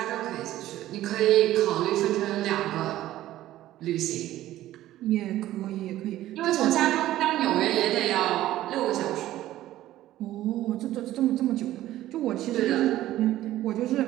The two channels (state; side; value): quieter; left; 14.4 dB